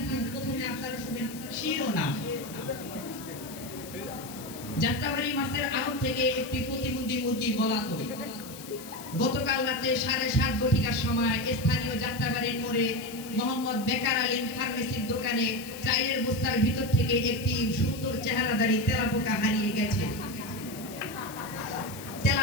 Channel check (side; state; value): left; noise; hiss, 14 dB below the sound